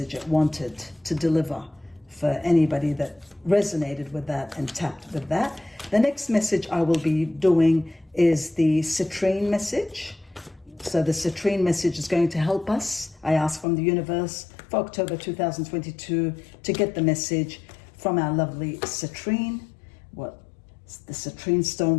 it wanted to deliver for anybody that resonated with that and tapped with that. The next message I will be doing is the citrine message. So the citrine message is going to help us. I ask from the universe for October 2022 to get the message from our lovely citrine, what the citrine stone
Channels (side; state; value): right; drops out; at 13.7 s